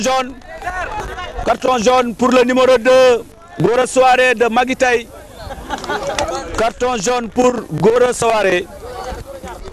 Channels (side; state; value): both; identical; correlation 1.00